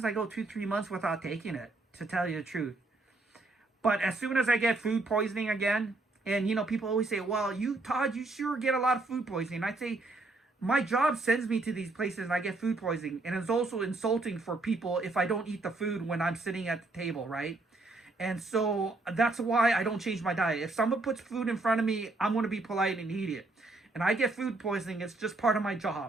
I go 2, 3 months without taking it, to tell you the truth. But as soon as I get food poisoning again, and people always say, well, Todd, you sure get a lot of food poisoning. I say, my job sends me to these places and I get food poisoning. And it's also insulting for people if I don't eat the food when I'm sitting at the table, right? And so that's why I don't change my diet. If someone puts food in front of me, I'm going to be polite and eat it. And I get food poisoning. It's just part of my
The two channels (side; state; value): left; quieter; 3.1 dB